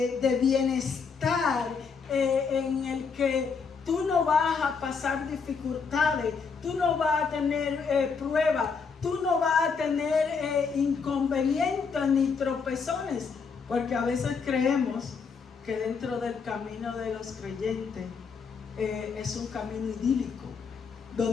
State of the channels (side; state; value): right; quieter; 5.5 dB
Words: bienestar en el que tú no vas a pasar dificultades, tú no vas a tener pruebas, tú no vas a tener inconvenientes ni tropezones, porque a veces creemos que dentro del camino de los creyentes es un camino idílico,